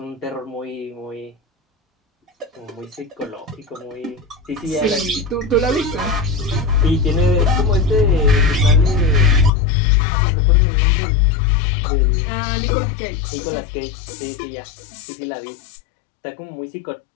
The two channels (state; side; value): drops out; right; at 9.5 s